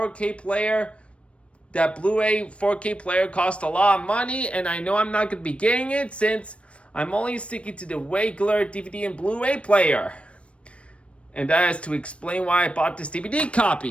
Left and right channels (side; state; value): right; late; 0.061 ms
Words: player, that Blu-ray 4K player costs a lot of money, and I know I'm not going to be getting it since I'm only sticking to the regular DVD and Blu-ray player. And that is to explain why I bought this DVD